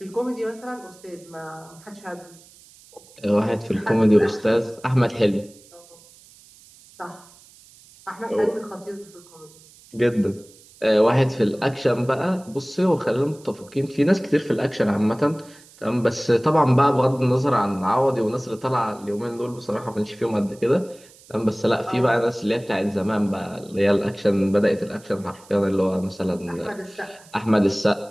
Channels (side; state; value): right; noise; hiss, 25 dB below the sound